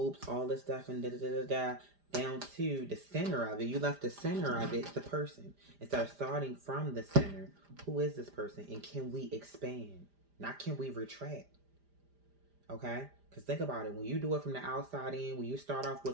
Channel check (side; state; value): left; late; 5.0 ms